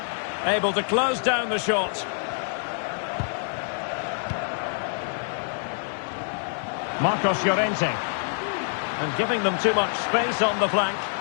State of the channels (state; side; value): silent; right; digital silence